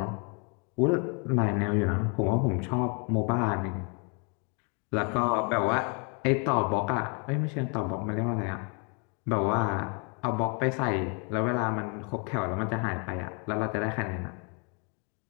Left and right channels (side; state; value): right; quieter; 36.1 dB